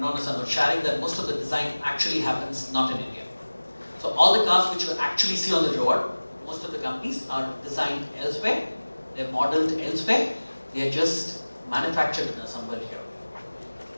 Nissan was sharing that most of the design actually happens not in India. So all the cars which you actually see on the road, most of the companies are designed elsewhere, they're modeled elsewhere, they are just manufactured and assembled here.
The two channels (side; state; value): both; inverted; correlation -1.00